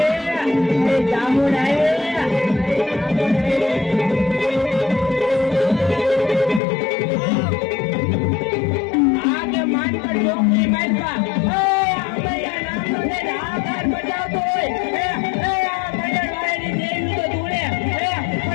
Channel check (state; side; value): drops out; right; at 6.6 s